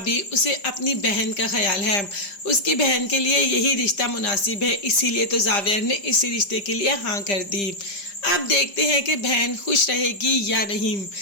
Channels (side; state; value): right; late; 5.0 ms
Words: उसे अपनी बहन का ख्याल है, उसकी बहन के लिए यही रिश्ता मुनासिब है, इसीलिए तो जावियार ने इसी रिश्ते के लिए हाँ कर दी। अब देखते हैं कि बहन खुश रहेगी या नहीं।